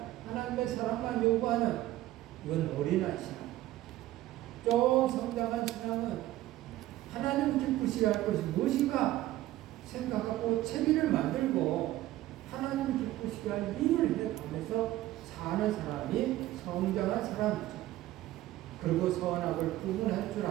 하나님의 사랑만 요구하는 이건 어린아이 신앙. 좀 성장한 신앙은 하나님 기쁘시게 할 것이 무엇인가 생각하고 채비를 만들고 하나님 기쁘시게 할 일을 해가면서 사는 사람이 성장한 사람이죠. 그리고 선악을 구분할 줄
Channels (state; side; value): quieter; left; 15.4 dB